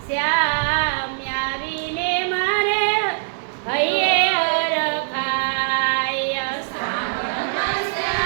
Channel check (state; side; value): silent; left; digital silence